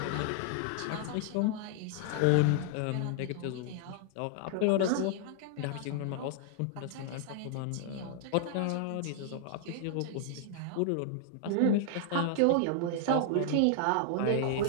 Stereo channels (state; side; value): different; both; correlation -0.01